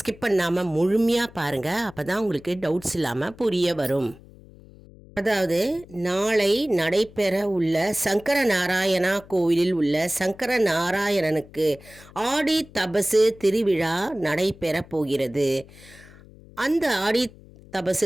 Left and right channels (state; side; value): noise; left; hum, 22 dB below the sound